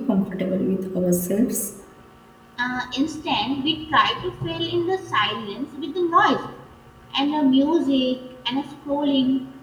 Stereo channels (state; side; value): identical; both; correlation 1.00